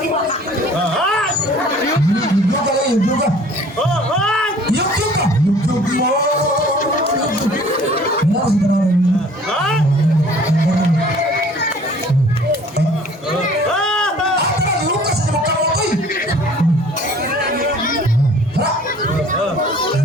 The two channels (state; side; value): normal; both; correlation 0.51